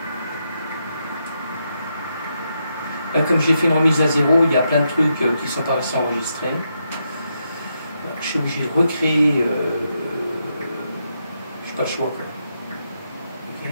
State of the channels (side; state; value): both; inverted; correlation -0.82